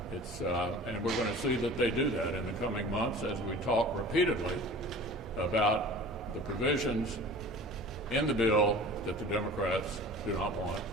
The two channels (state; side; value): normal; both; correlation 0.41